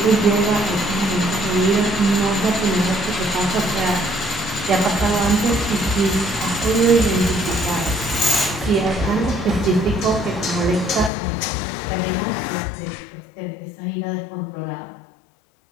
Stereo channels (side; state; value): right; drops out; at 11.1 s